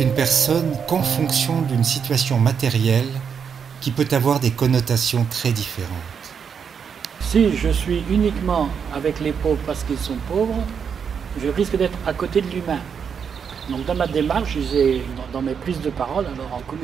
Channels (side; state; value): left; quieter; 6.9 dB